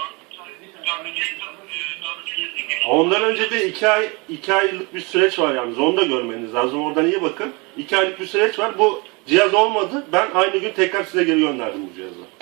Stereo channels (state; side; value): quieter; left; 28.3 dB